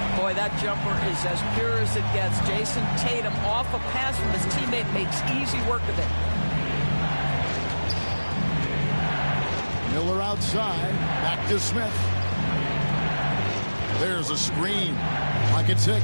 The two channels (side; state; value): both; inverted; correlation -1.00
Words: Boy, that jumper is as pure as it gets. Jason Tatum off a pass from his teammate makes easy work of it. Miller outside. Back to Smith. There's a screen. Pocket 6.